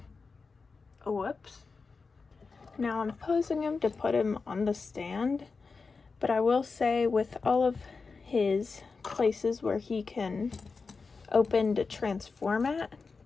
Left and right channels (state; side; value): quieter; right; 4.5 dB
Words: Oh, whoops. Now I'm posing him to put him on the stand. But I will say, with all of his places where he can open to transform at,